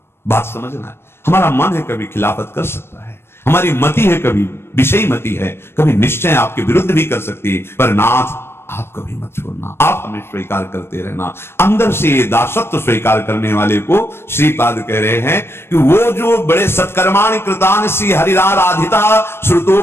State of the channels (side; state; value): right; late; 0.12 ms